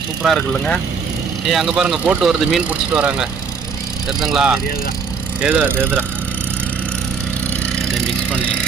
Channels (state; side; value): quieter; left; 5.7 dB